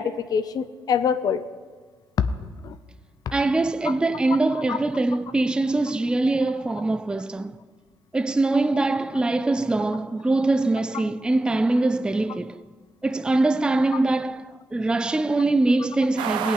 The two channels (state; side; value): normal; both; correlation 0.89